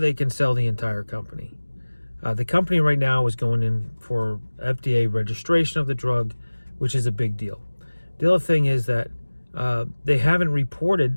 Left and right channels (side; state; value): both; inverted; correlation -1.00